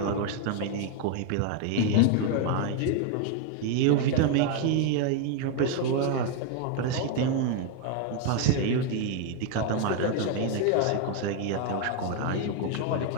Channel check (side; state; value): both; different; correlation 0.01